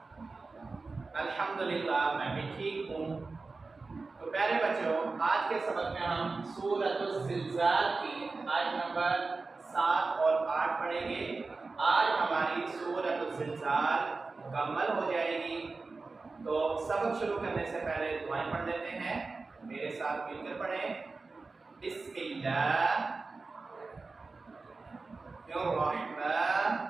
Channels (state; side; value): quieter; left; 3.9 dB